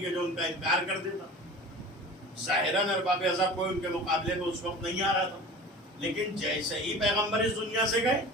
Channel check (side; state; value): both; normal; correlation 0.37